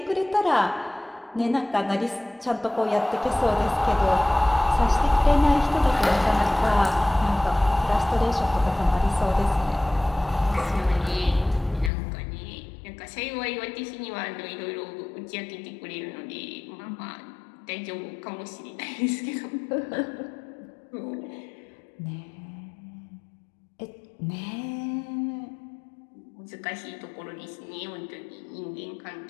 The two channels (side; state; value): right; drops out; at 11.9 s